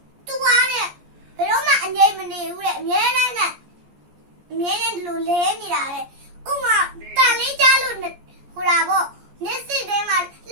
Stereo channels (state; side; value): late; left; 14 ms